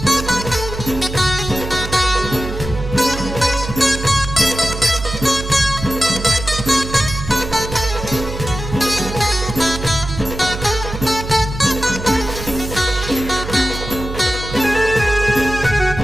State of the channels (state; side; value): noise; right; hum, 8 dB below the sound